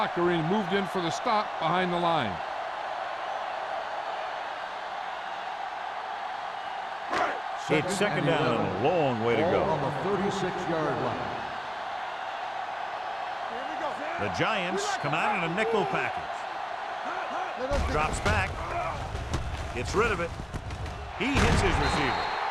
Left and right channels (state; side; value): identical; both; correlation 1.00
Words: and he moved in for the stop behind the line. It's second down and a long way to Ball go. on the 36-yard line. Here we go. The Giants come out in a nickel package. Drops back. Gets rid of it. He hits his receiver.